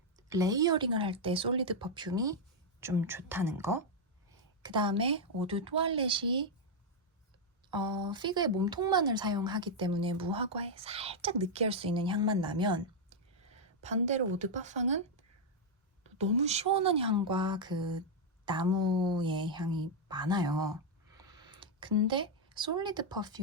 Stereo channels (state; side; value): normal; both; correlation -0.01